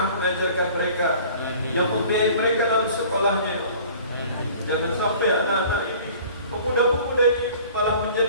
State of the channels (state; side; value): inverted; both; correlation -0.48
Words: mengajarkan mereka, yang membiayai mereka dalam sekolahnya, ya Allah. Jangan sampai anak-anak ini, pemuda-pemuda ini malah